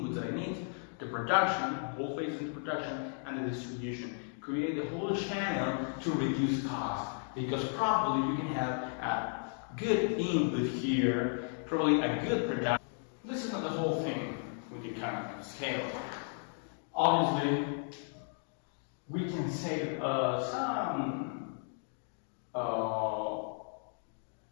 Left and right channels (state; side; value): silent; right; 55 dB below the other